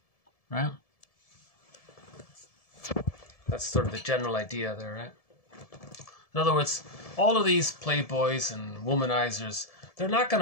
right? That's sort of the general idea there, right? In other words, all of these playboys and womanizers, they're not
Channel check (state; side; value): late; right; 1.7 ms